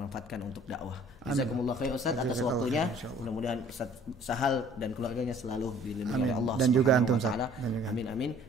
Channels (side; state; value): both; normal; correlation 0.54